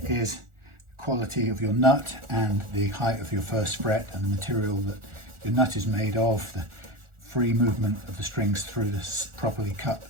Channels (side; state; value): left; late; 1.4 ms